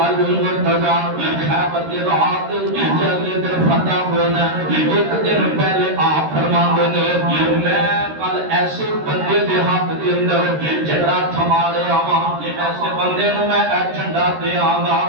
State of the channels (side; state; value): left; late; 13 ms